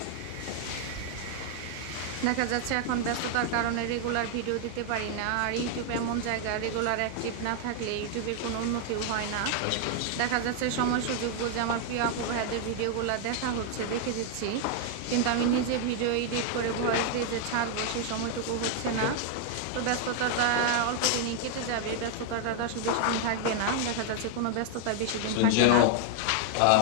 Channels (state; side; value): different; both; correlation 0.00